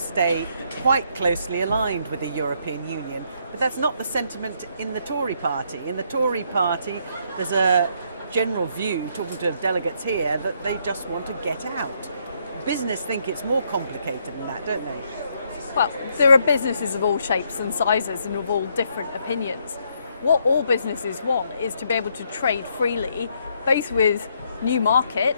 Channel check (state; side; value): inverted; both; correlation -0.72